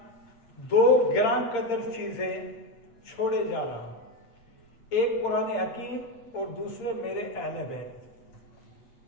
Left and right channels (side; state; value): right; late; 8.7 ms